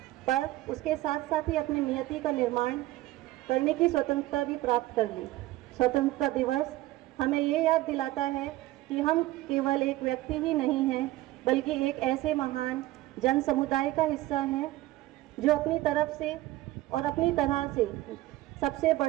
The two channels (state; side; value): quieter; left; 16.8 dB